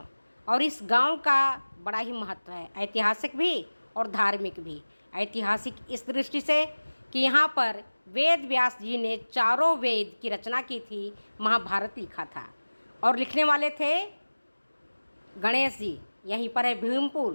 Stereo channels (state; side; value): inverted; both; correlation -1.00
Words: और इस गांव का बड़ा ही महत्व है, ऐतिहासिक भी और धार्मिक भी। ऐतिहासिक इस दृष्टि से कि यहाँ पर वेद व्यास जी ने चारों वेद की रचना की थी, महाभारत लिखा था। और लिखने वाले थे गणेश जी। यहीं पर है